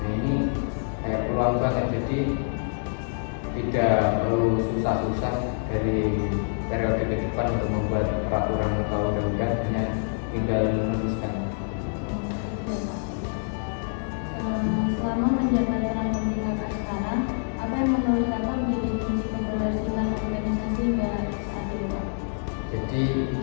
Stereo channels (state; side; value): silent; right; digital silence